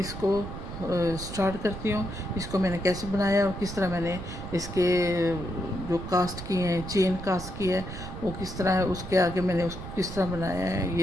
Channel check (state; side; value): noise; right; rumble, 9 dB below the sound